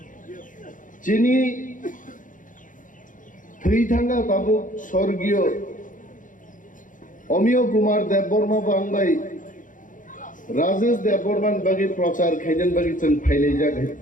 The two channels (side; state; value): right; late; 0.38 ms